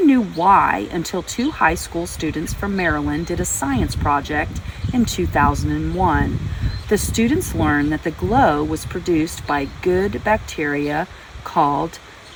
knew why until two high school students from Maryland did a science project in 2001. The students learned that the glow was produced by good bacteria called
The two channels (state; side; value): identical; both; correlation 1.00